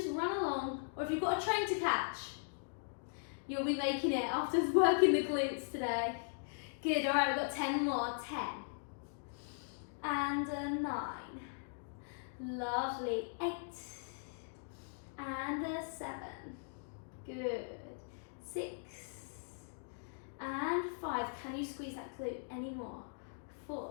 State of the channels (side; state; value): right; silent; digital silence